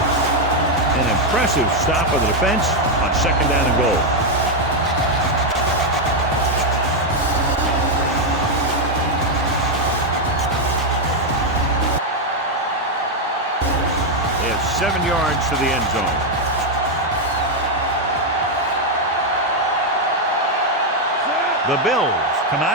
An impressive stop of the defense on 2nd down and goal. They have 7 yards to the end zone. The Bills come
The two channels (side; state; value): both; normal; correlation 0.03